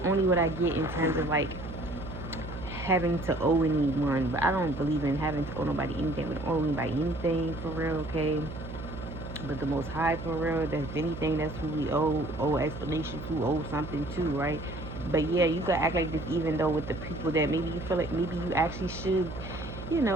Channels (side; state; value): right; noise; hum, 10 dB below the sound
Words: what I get in terms of like having to owe anyone. But I don't believe in having to owe nobody anything. We don't owe anybody anything for real, okay? But the Most High, for real, that's anything, that's who we owe explanation to, owe something to, right? But yeah, you could act like this even though with the people that maybe you feel like maybe you actually should, you